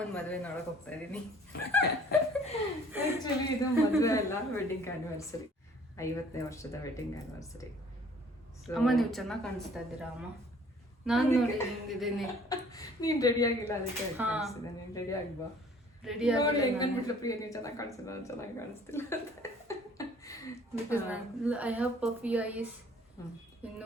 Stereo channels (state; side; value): normal; both; correlation 0.55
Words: ಮದುವೆ ನೋಡೋಕೆ ಹೋಗ್ತಾ ಇದ್ದೀನಿ. ಆ್ಯಕ್ಚುಲಿ ಇದು ಮದುವೆ ಅಲ್ಲ, ವೆಡ್ಡಿಂಗ್ ಆ್ಯನಿವರ್ಸರಿ. 50ನೇ ವರ್ಷದ ವೆಡ್ಡಿಂಗ್ ಆ್ಯನಿವರ್ಸರಿ. ಅಮ್ಮ ನೀವು ಚೆನ್ನಾಗಿ ಕಾಣಿಸ್ತಾ ಇದ್ದೀರಾ ಅಮ್ಮ. ನಾನು ನೋಡಿ ಹಿಂಗಿದ್ದೀನಿ. ನೀನು ರೆಡಿ ಆಗಿಲ್ಲ, ಅದಕ್ಕೆ ನೀನು ರೆಡಿ ಆಗ್ಬಾ. ರೆಡಿ ಆಗಿ ಹೆಂಗನ್ಬಿಟ್ಲು ಪ್ರಿಯ, ನೀವು ಚೆನ್ನಾಗಿ ಕಾಣಿಸ್ತಿಲ್ಲ, ನಾನು ಚೆನ್ನಾಗಿ ಕಾಣಿಸ್ತಿಲ್ಲ. Because I have puffy eyes.